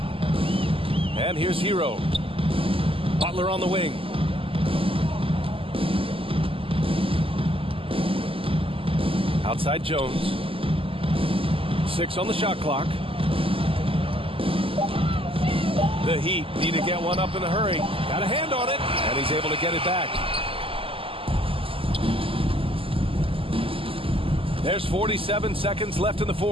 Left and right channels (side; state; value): left; late; 0.26 ms